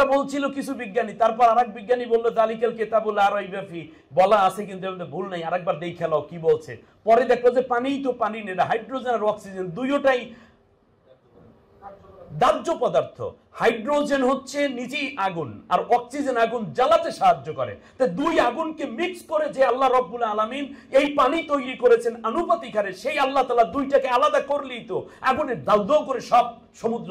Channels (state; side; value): identical; both; correlation 1.00